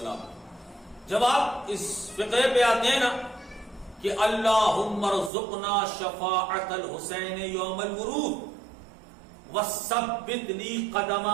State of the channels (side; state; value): left; drops out; at 5.3 s